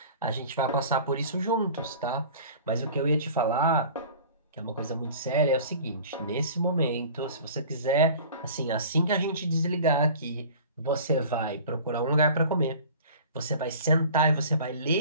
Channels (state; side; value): inverted; both; correlation -0.43